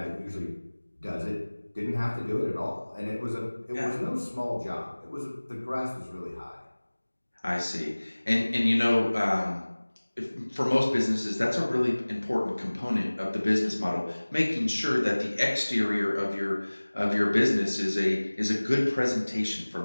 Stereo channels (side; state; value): both; inverted; correlation -1.00